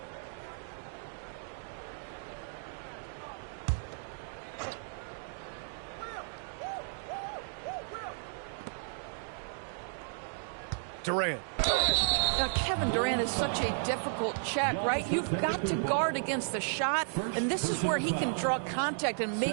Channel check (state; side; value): silent; left; digital silence